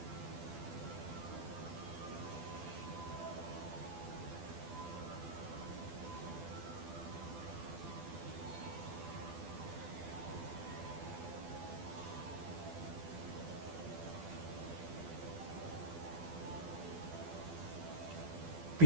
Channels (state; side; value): late; left; 12 ms